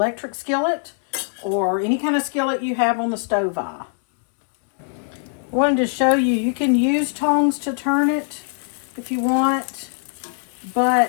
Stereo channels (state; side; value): silent; right; digital silence